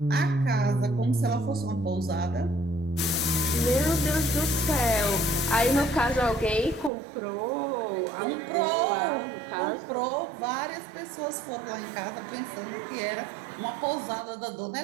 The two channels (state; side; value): drops out; left; at 6.9 s